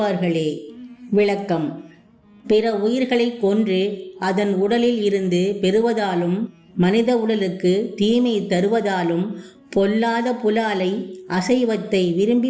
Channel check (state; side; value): identical; both; correlation 1.00